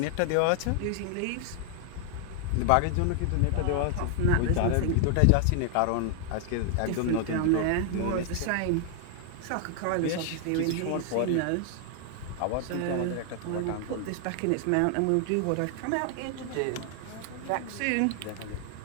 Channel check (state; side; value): different; both; correlation 0.00